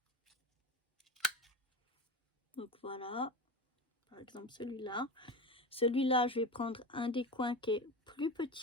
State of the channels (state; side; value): normal; both; correlation 0.26